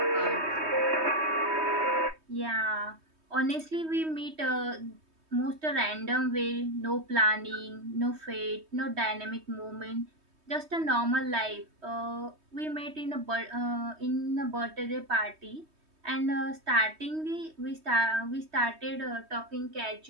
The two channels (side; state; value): left; late; 3.2 ms